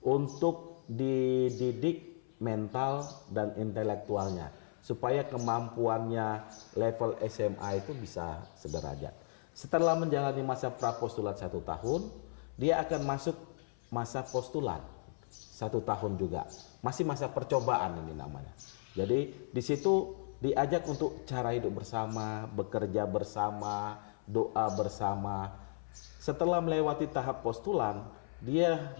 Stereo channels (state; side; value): silent; right; 54 dB below the other